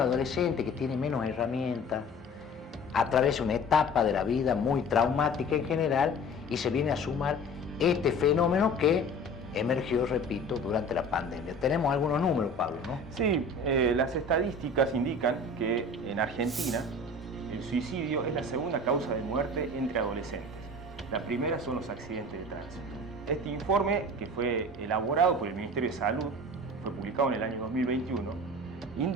que tiene menos herramientas, atraviesa una etapa de la vida muy traumática en general y se viene a sumar este fenómeno que emergió, repito, durante la pandemia. Tenemos algunos números, Pablo, ¿no? Sí, las estadísticas indican que en Argentina el suicidio es la segunda causa de muerte entre adolescentes. La primera son los accidentes de tránsito. Este informe, que fue elaborado por el Ministerio de Salud, fue publicado en el año 2021,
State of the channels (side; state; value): both; normal; correlation 0.41